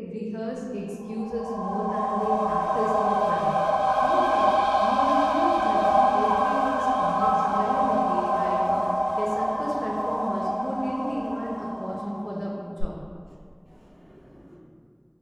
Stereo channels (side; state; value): both; identical; correlation 1.00